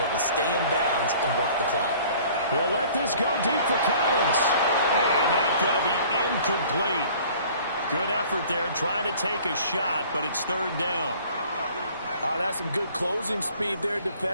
to stay in bounds and work the clock. They'll let this go deep for Collins. And that's going to be incomplete. Good effort there, trying to take a shot, but it's third down. Oh, that's some good closing speed there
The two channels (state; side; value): inverted; both; correlation -0.51